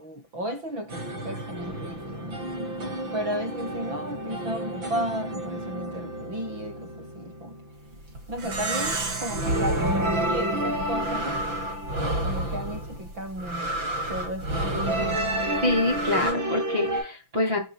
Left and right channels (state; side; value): late; left; 6.0 ms